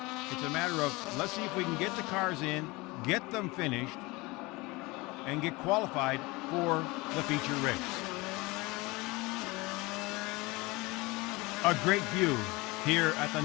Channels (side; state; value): right; quieter; 23.5 dB